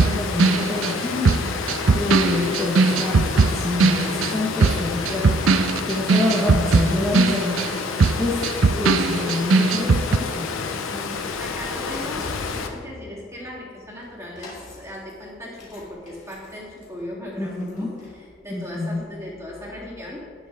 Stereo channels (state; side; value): normal; both; correlation 0.64